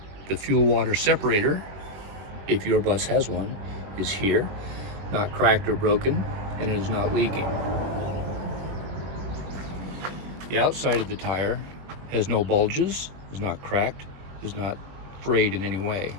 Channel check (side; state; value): left; late; 21 ms